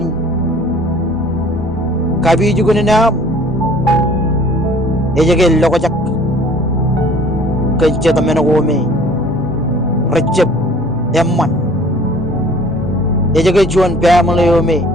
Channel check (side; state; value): both; normal; correlation 0.51